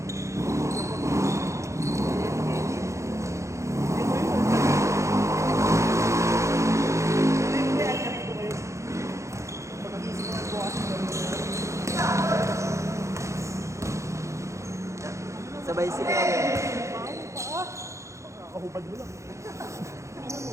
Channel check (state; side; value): late; left; 0.14 ms